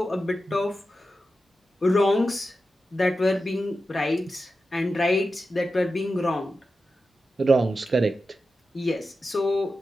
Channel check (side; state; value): both; normal; correlation 0.91